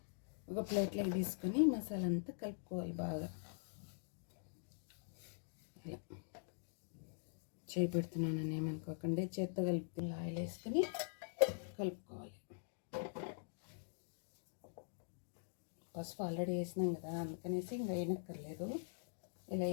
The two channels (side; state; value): right; silent; digital silence